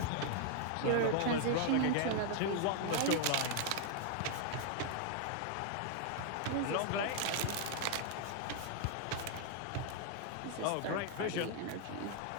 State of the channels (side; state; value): both; different; correlation 0.00